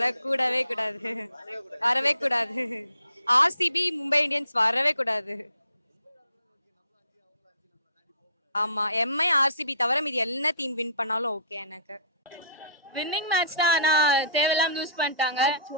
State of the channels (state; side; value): inverted; both; correlation -0.53